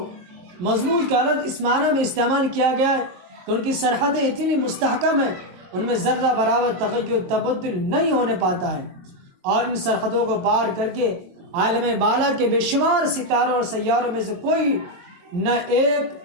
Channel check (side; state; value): left; late; 23 ms